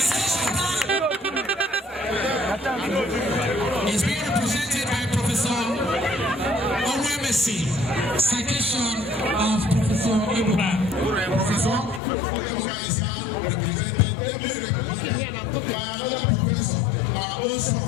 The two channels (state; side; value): drops out; right; at 12.0 s